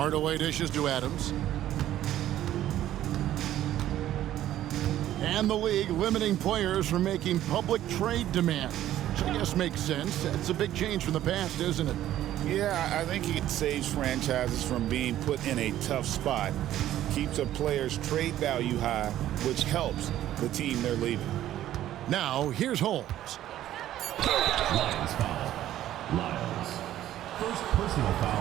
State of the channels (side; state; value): left; quieter; 12.8 dB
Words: dishes to Adams. And the league limiting players from making public trade demands, which I guess makes sense. That's a big change from the past, isn't it? Yeah, I think it saves franchises from being put in a tough spot. Keeps a player's trade value high, which helps the team they're leaving. Now, here's Holmes. Lions foul. Lyles. First personal